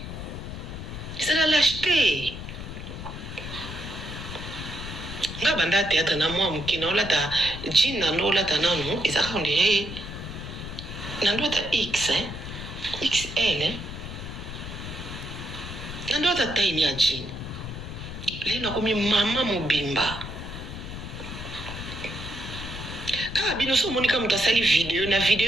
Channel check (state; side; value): noise; left; rumble, 9 dB below the sound